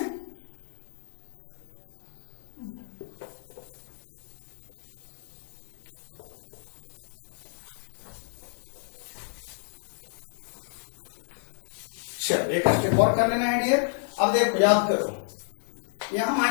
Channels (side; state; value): right; silent; digital silence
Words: चलो एक स्टेप और कर लेना है डियर। अब देखो याद करो, यहाँ